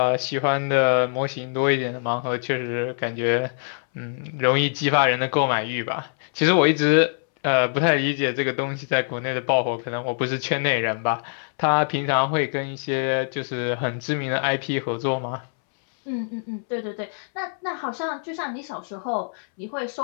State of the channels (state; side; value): silent; right; 63 dB below the other